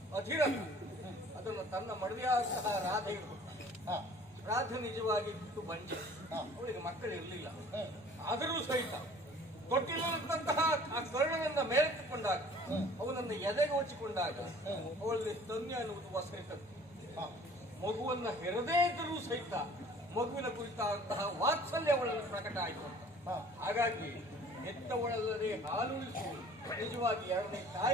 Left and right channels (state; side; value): normal; both; correlation 0.50